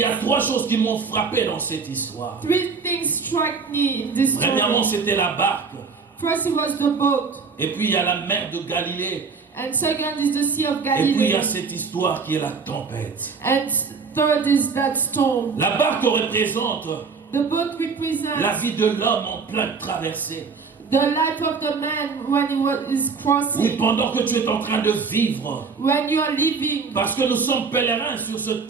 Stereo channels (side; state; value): left; quieter; 5.1 dB